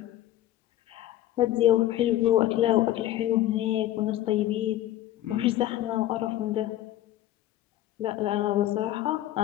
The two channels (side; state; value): right; quieter; 13.8 dB